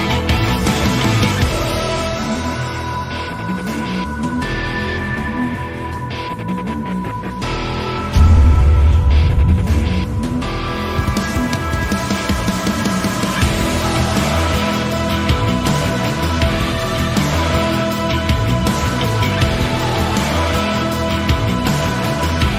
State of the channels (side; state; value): both; identical; correlation 1.00